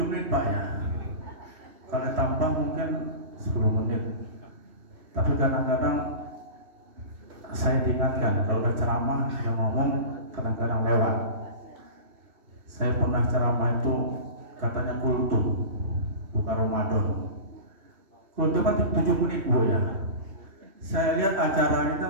menit Pak ya. Kalau tambah mungkin 10 menit. Tapi kadang-kadang saya diingatkan kalau udah ceramah yang ngomong kadang-kadang lewat. Saya pernah ceramah itu katanya kultum, bukan Ramadan. Kultum kan 7 menit Bu ya. Saya lihat acara kita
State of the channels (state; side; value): late; left; 2.7 ms